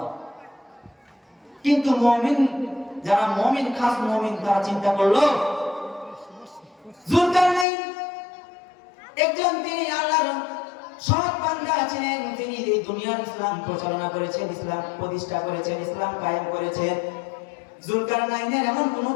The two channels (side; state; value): right; drops out; at 7.7 s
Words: কিন্তু মুমিন, যারা মুমিন, খাস মুমিন, তারা চিন্তা করলো যুলকারনাইন একজন, তিনি আল্লাহর সৎ বান্দা ছিলেন, তিনি এই দুনিয়ার ইসলাম পরিচালনা করেছেন, ইসলাম প্রতিষ্ঠা করেছেন, ইসলাম কায়েম করেছেন। যুলকারনাইনের এমন কোন